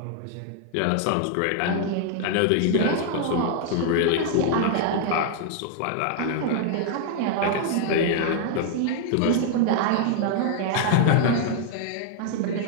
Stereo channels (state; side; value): different; both; correlation 0.00